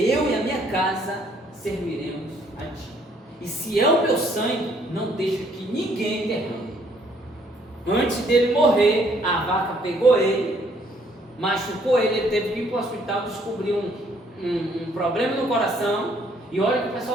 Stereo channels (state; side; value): normal; both; correlation 0.65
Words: e a minha casa serviremos a ti. E se é o meu sangue, não deixa que ninguém derrame. Antes dele morrer, a vaca pegou ele, machucou ele teve que ir para o hospital, descobriu um problema no coração, e olha que o